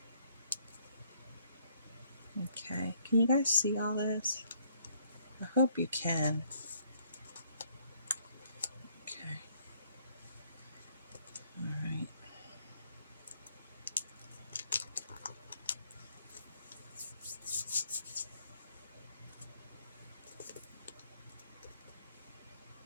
Okay, can you guys see all this? I hope you can. Okay. All right.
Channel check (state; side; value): inverted; both; correlation -0.66